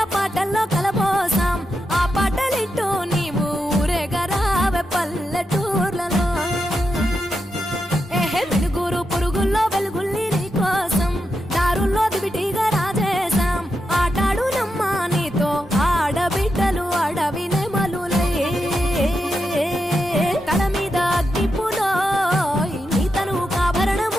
పాటల్లో కలపోసాం ఆ పాటలిట్టు నీవు ఊరేగరావే పల్లెటూర్లలో వెలుగురు పురుగుల్లో వెలుగుల్ని నీ కోసం దారుల్లో దివిటిగా రాజేశాం ఆటాడు నమ్మ నీతో ఆడబిడ్డలు అడవి నెమలులై తల మీద అగ్గిపులో నీ తను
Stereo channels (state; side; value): normal; both; correlation 0.87